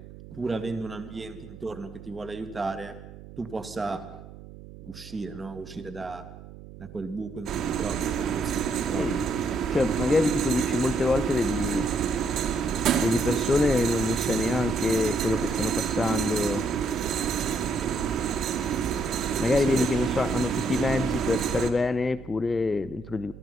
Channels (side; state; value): right; noise; hum, 17 dB below the sound